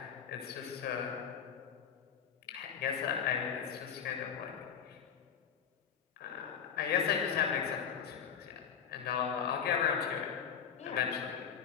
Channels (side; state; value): right; quieter; 7.6 dB